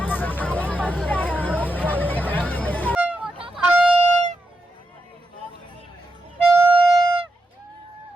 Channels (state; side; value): normal; both; correlation 0.86